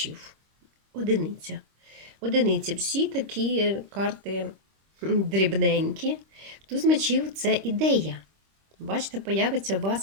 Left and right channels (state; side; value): late; left; 26 ms